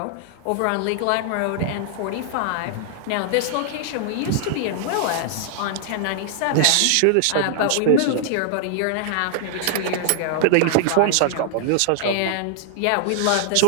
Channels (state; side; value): different; both; correlation -0.01